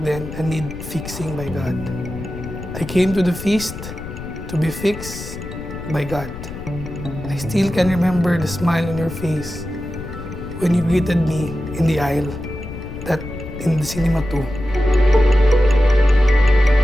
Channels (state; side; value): noise; left; rumble, 10 dB below the sound